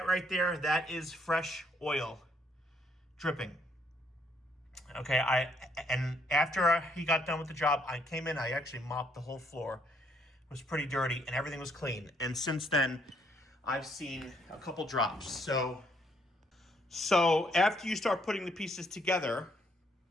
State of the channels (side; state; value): both; normal; correlation 0.70